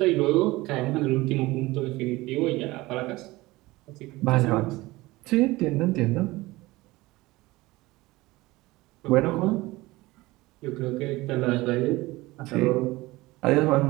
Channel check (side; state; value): left; quieter; 20.0 dB